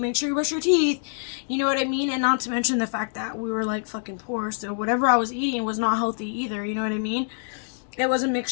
sure you brush your teeth. You know what I mean? And not to mention the fact that we were, like, fucking poor. So whatever I was eating was not healthy either. You know what I mean? It was a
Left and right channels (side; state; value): right; silent; digital silence